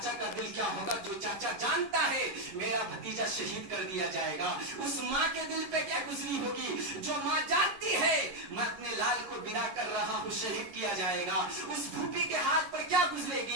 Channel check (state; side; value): late; left; 11 ms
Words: का दिल क्या होगा, जो चाचा जानता है मेरा भतीजा शहीद कर दिया जाएगा, उस माँ के दिल पे क्या गुजरी होगी जो माँ जानती है मैं अपने लाल को विदा कर रहा हूँ शहीद किया जाएगा, उस फूफी के हाथ पर क्या